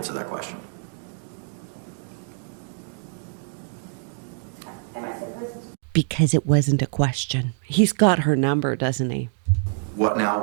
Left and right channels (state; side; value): silent; left; 59 dB below the other